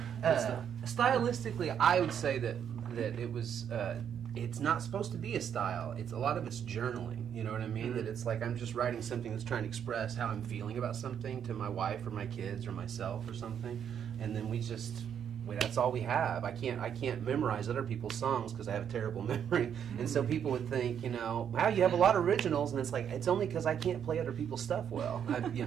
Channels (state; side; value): quieter; left; 8.5 dB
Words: Stylistically, I would say that it was. It's not supposed to be a style. A lot of it's journaling. You know what I mean? That it's like I'm just writing something that's trying to express how I'm feeling about something to my wife or my kids or myself or something, and then that's all we have. I can't memorize other people's songs because I have a terrible memory, and so people would think, wow, you have a lot of originals, and it's like it's only because I can't play other people's stuff well.